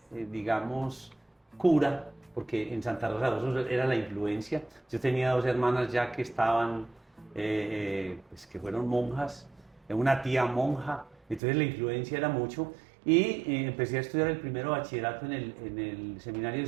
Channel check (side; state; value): left; drops out; at 11.4 s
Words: digamos, cura, porque en Santa Rosa de Osos era la influencia. Yo tenía dos hermanas ya que estaban, pues que fueron monjas, una tía monja, entonces la influencia era mucho. Y empecé a estudiar el primero bachillerato en el seminario de